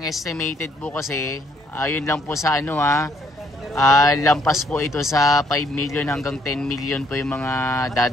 estimated po kasi, ayun lang po sa lampas po ito sa 5 million hanggang 10 million po yung mga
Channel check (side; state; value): both; normal; correlation 0.68